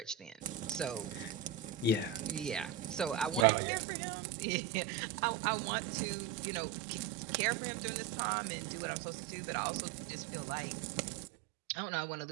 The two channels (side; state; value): left; drops out; at 3.5 s